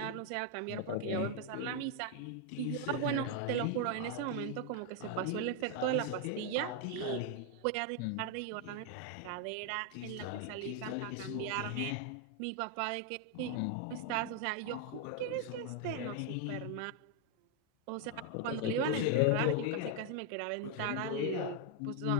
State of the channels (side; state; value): both; different; correlation 0.00